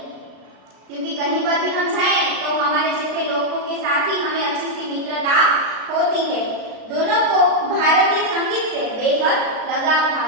क्योंकि कहीं पर भी हम जाएं तो हमारे जैसे लोगों के साथ ही हमें अच्छी सी मित्रता होती है। दोनों को भारतीय संगीत से बेहद लगाव था।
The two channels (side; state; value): left; late; 36 ms